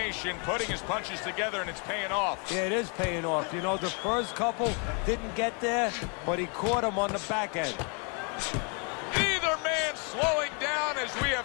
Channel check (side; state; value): right; quieter; 36.4 dB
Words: putting his punches together, and it's paying off. Yeah, it is paying off. You know, the first couple didn't get there, but he caught him on the back end. Neither man slowing down as we